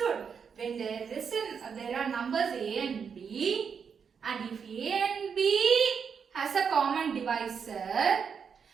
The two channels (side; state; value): left; quieter; 6.6 dB